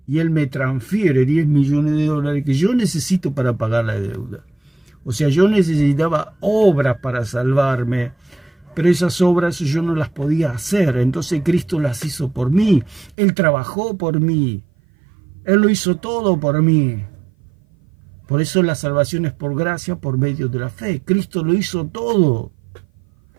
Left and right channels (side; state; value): left; drops out; at 13.2 s